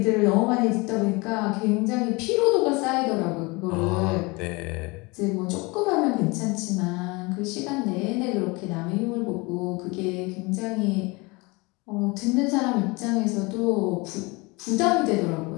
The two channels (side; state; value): right; quieter; 26.0 dB